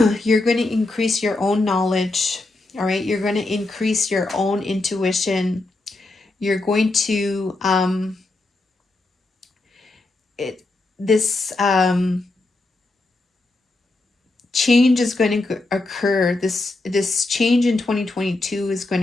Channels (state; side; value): quieter; right; 3.1 dB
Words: you're going to increase your own knowledge, all right? You're going to increase your own intuition. You're going to this change is going to occur. This change in 2022 is